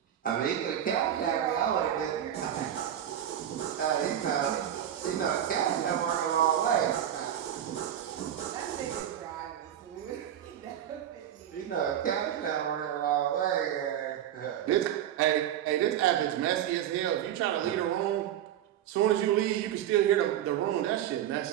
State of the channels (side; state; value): left; quieter; 10.7 dB